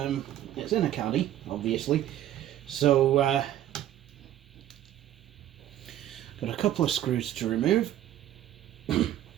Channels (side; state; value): left; quieter; 12.4 dB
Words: a caddy, obviously. So, got a couple of screws to remove.